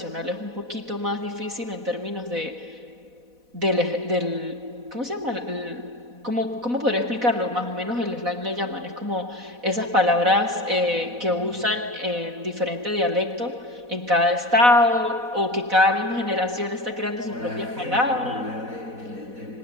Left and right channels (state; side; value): late; left; 4.1 ms